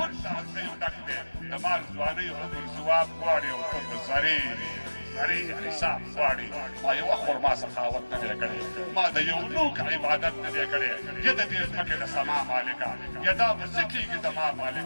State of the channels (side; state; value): both; inverted; correlation -1.00